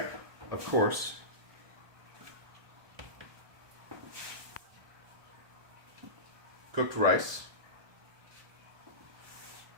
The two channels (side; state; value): left; late; 1.2 ms